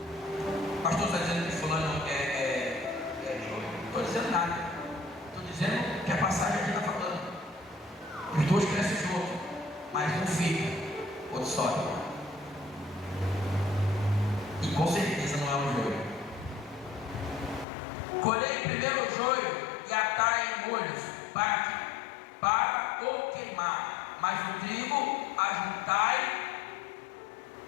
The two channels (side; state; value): right; drops out; at 17.7 s